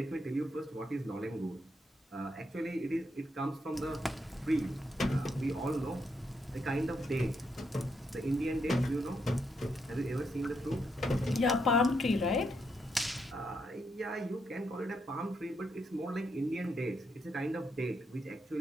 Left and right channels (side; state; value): both; normal; correlation 0.79